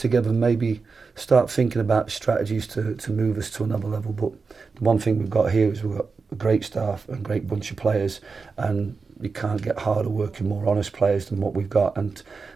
and maybe start thinking about strategies to move us to another level. But the one thing we've got here is we've got a great staff and a great bunch of players, and you can't get harder working, more honest players than what we've got, and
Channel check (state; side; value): quieter; left; 4.7 dB